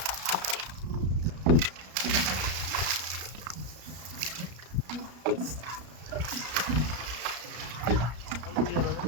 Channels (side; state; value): left; late; 33 ms